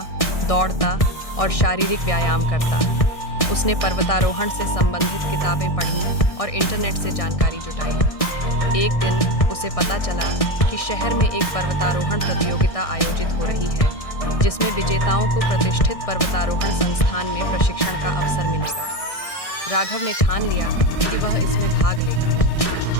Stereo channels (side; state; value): right; late; 1.6 ms